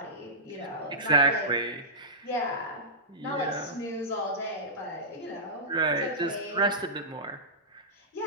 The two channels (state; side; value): normal; both; correlation -0.15